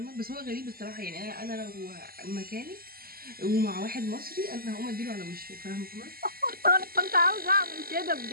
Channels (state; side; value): late; left; 0.43 ms